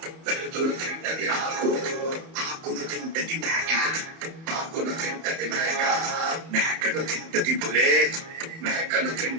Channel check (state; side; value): late; left; 31 ms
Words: వెలుతురు తింటది ఆకు, ఆకును తింటది మేక, ఆకును తింటది మేక, మేకను తింటది పులే, మేకను